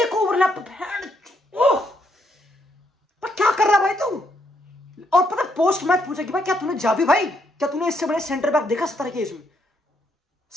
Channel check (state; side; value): normal; both; correlation 0.74